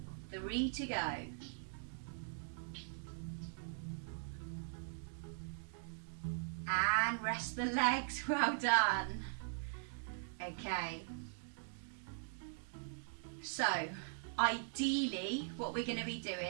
3 to go. And rest the legs, well done. Okay. So, ideally, what we're going to be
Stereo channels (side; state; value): left; silent; digital silence